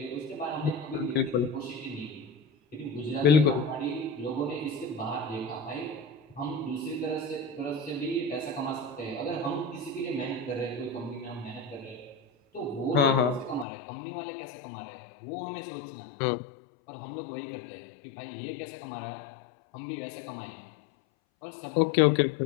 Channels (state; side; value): drops out; right; at 13.7 s